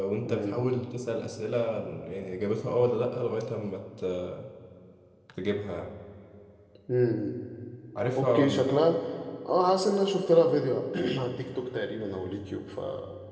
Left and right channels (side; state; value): both; identical; correlation 1.00